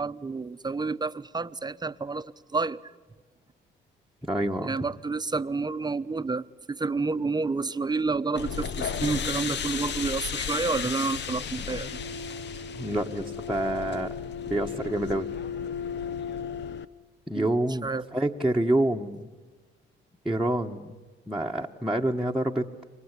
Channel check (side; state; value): both; normal; correlation 0.65